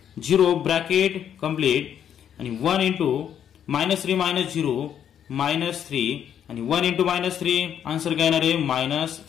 0 bracket complete आणि 1 इंटू -3 -0 -3 आणि 1 इंटू -3 आन्सर काय येणार आहे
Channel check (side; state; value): right; quieter; 9.2 dB